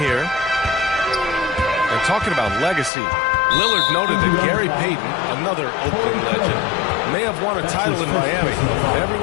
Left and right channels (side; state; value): right; drops out; at 2.9 s